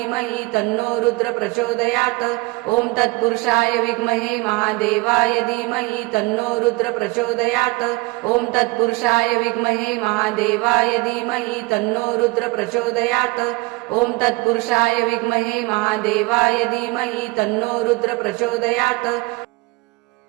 तन्नो रुद्र प्रचोदयात् ओम तत्पुरुषाय विद्महे महादेवाय धीमहि तन्नो रुद्र प्रचोदयात् ओम तत्पुरुषाय विद्महे महादेवाय धीमहि तन्नो रुद्र प्रचोदयात् ओम तत्पुरुषाय विद्महे महादेवाय धीमहि तन्नो रुद्र प्रचोदयात्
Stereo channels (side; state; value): left; quieter; 23.9 dB